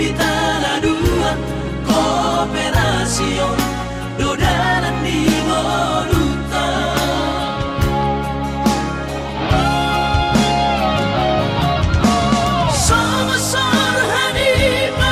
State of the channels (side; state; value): both; identical; correlation 1.00